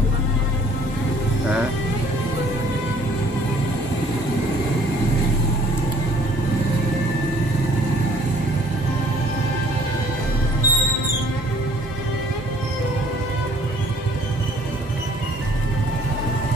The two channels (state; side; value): normal; both; correlation 0.57